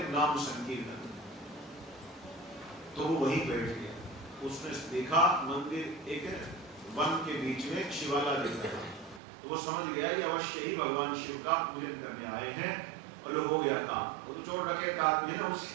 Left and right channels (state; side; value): drops out; left; at 9.2 s